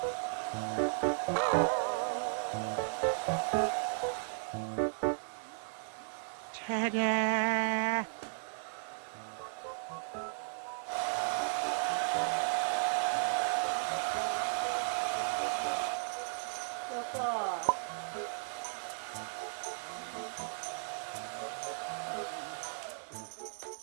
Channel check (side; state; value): left; silent; 54 dB below the other